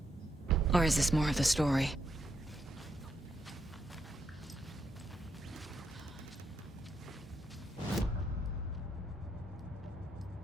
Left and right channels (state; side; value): normal; both; correlation 0.79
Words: Or is this more of the story?